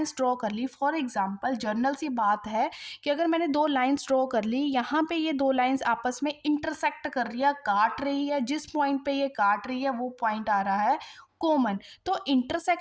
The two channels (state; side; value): identical; both; correlation 1.00